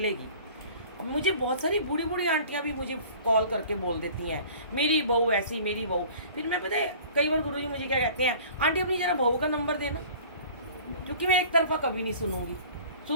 अब मुझे बहुत सारी बूढ़ी बूढ़ी आंटियाँ भी मुझे कॉल करके बोल देती हैं, मेरी बहू ऐसी, मेरी बहू। फिर मैं, पता है कई बार गुरुजी मुझे क्या कहते हैं, आंटी अपनी ज़रा बहू का नंबर देना, क्योंकि मैं एक तरफा कभी नहीं सुनूंगी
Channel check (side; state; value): both; inverted; correlation -0.46